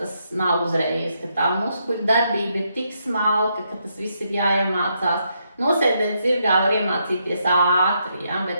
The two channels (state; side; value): inverted; both; correlation -0.78